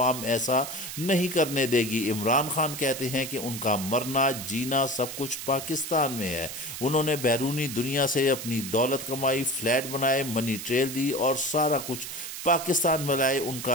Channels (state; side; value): noise; right; hiss, 8 dB below the sound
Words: ایسا نہیں کرنے دے گی۔ عمران خان کہتے ہیں کہ ان کا مرنا جینا سب کچھ پاکستان میں ہے۔ انہوں نے بیرونی دنیا سے اپنی دولت کمائی، فلیٹ بنائے، منی ٹریل دی اور سارا کچھ پاکستان میں لائے۔ ان